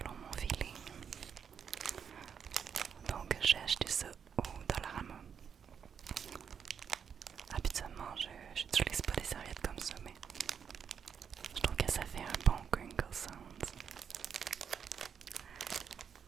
mon feeling. Donc j'ai acheté ça au Dollarama. Habituellement, je n'utilise pas des serviettes comme ça, mais je trouve que ça fait un bon crinkle sound.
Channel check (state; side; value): quieter; left; 7.3 dB